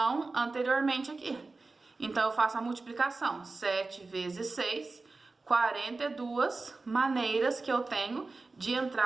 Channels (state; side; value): quieter; left; 3.6 dB